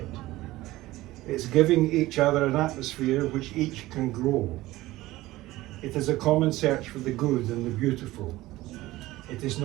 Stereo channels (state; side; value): quieter; left; 17.6 dB